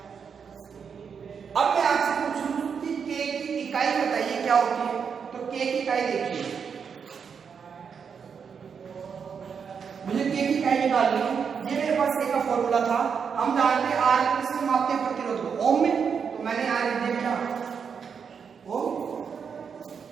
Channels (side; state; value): left; quieter; 6.5 dB